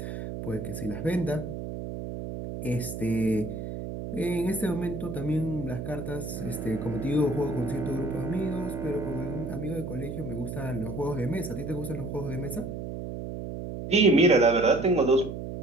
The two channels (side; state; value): right; noise; hum, 7 dB below the sound